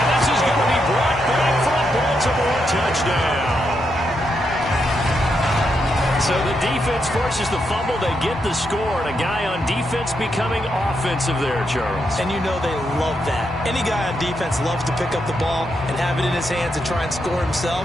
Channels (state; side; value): normal; both; correlation 0.82